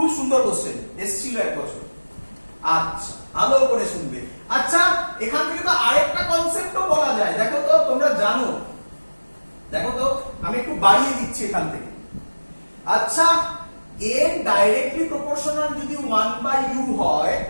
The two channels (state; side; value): inverted; both; correlation -1.00